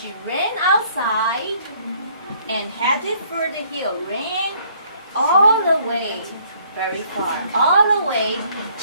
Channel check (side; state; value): both; inverted; correlation -0.62